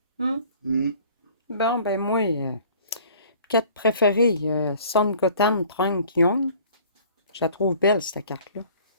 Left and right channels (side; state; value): both; inverted; correlation -0.51